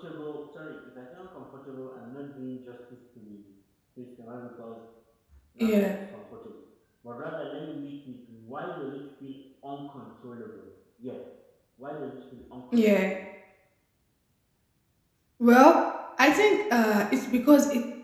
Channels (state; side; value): identical; both; correlation 1.00